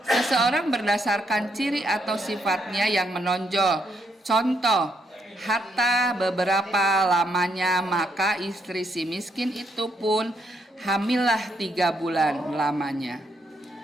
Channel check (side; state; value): both; normal; correlation 0.76